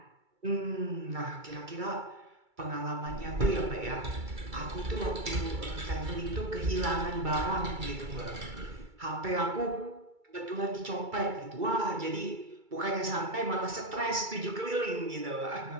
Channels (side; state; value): left; late; 2.3 ms